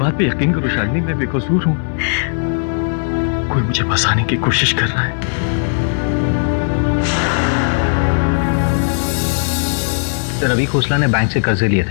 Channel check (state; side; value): silent; right; digital silence